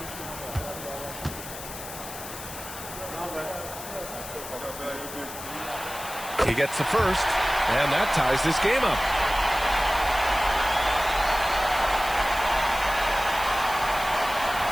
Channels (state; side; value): noise; left; hiss, 11 dB below the sound